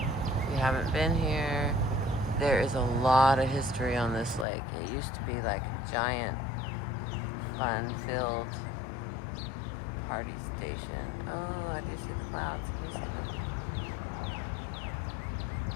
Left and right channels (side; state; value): right; drops out; at 4.5 s